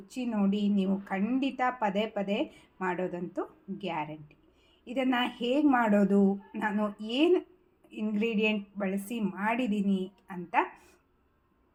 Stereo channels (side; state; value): both; identical; correlation 1.00